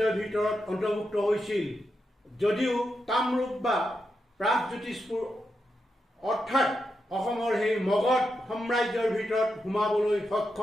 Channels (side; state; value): both; normal; correlation 0.86